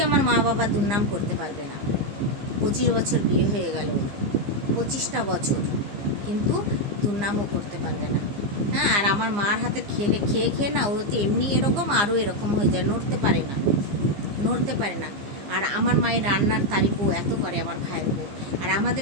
আমার মা বাবা দুর্নাম করতে পারবে না। 25 বছর বিয়ে হয়ে গেল, 25টা বছর, কিন্তু দুর্নামও করতে পারবে না। হ্যাঁ, আর আমার মার হাতে খেয়ে না, ও তো এমনি এরকম, আরও এরকম হয়ে যায়, নড়তে পারে না। আর আমার মায়ের রান্নার তারিফও এত করে আমার ভাইয়ের বউ। আর আমাদের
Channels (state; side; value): late; left; 15 ms